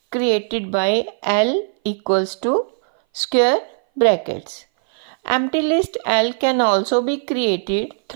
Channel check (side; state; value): left; silent; 60 dB below the other